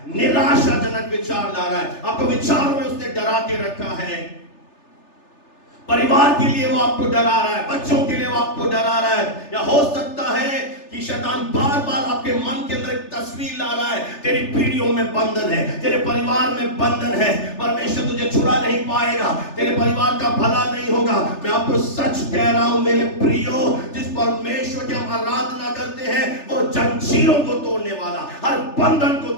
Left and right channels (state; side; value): late; right; 3.4 ms